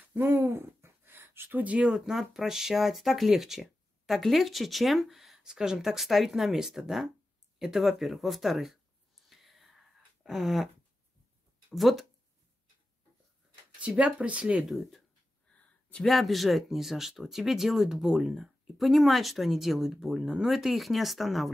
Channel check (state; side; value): normal; both; correlation 0.93